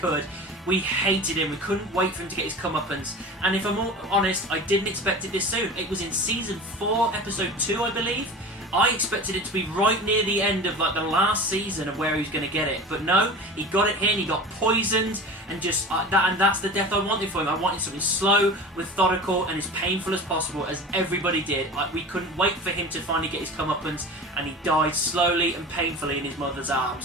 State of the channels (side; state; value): both; normal; correlation 0.34